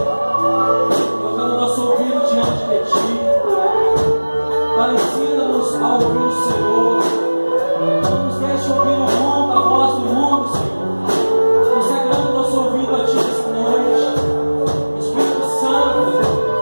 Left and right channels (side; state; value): both; inverted; correlation -1.00